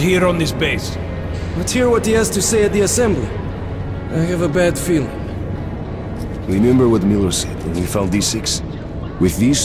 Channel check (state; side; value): identical; both; correlation 1.00